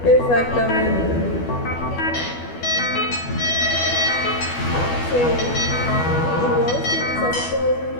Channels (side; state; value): right; late; 12 ms